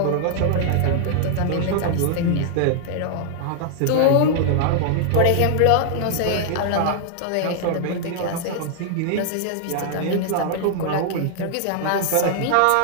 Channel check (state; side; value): different; both; correlation -0.01